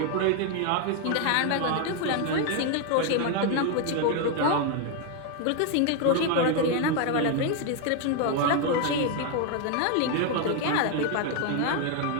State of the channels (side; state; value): both; different; correlation 0.01